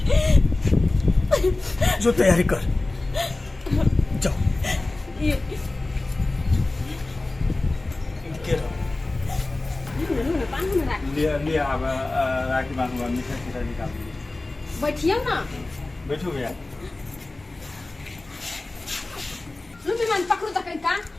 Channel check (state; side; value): quieter; right; 3.0 dB